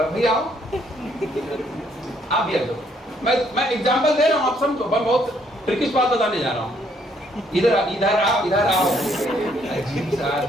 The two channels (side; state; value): both; normal; correlation 0.69